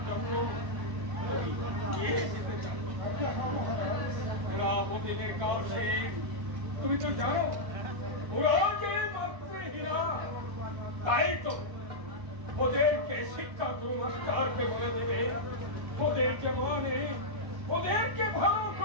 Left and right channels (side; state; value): left; late; 1.0 ms